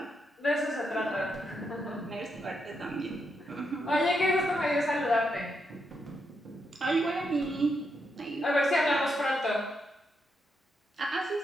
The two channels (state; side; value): normal; both; correlation 0.81